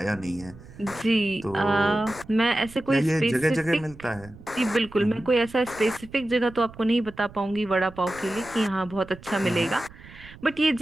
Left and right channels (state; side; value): noise; right; rumble, 19 dB below the sound